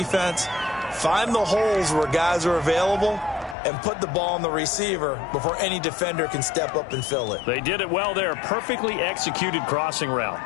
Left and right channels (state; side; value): drops out; right; at 3.6 s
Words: find the holes where guys are available and put the ball on the receiver before any defender can step up and fill it. They did it well there. Perfectly executed crossing route.